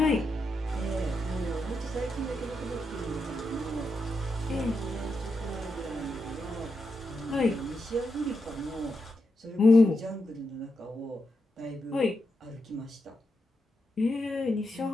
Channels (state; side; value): normal; both; correlation 0.86